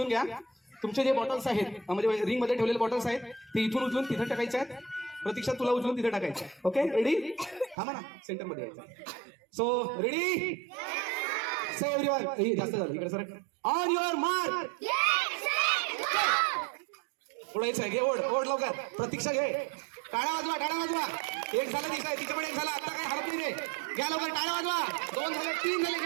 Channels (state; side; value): drops out; left; at 7.8 s